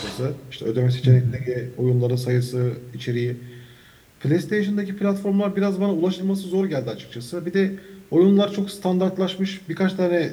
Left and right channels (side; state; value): both; identical; correlation 1.00